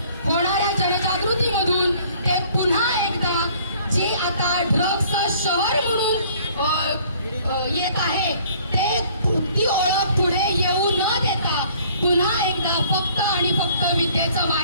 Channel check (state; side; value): inverted; both; correlation -0.56